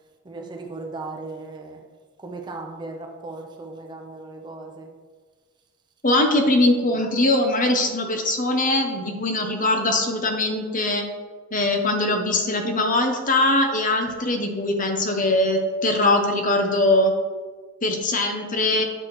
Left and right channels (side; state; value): both; normal; correlation 0.14